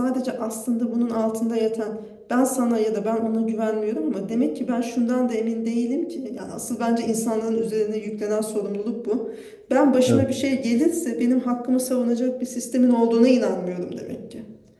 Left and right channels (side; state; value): both; identical; correlation 1.00